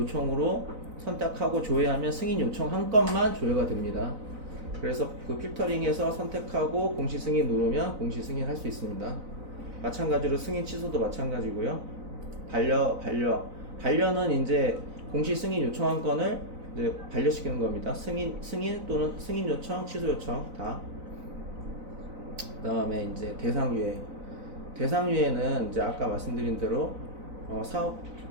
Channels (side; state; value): left; late; 4.0 ms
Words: 선택하고 조회하면 승인 요청 한 건만 조회가 됩니다. 그래서 그 필터링에서 선택하고 공시 승인 누르면 공시 승인 할 수 있습니다. 마찬가지로 승인 취소도 마찬가지고요. 반려는 이제 공시 승인 요청한 건을 이제 반려시키는 겁니다. 승인 또는 승인 요청, 취소 요청 다. 그 다음에 이제 대상유예는 이제 아까 말씀드린 대로 사업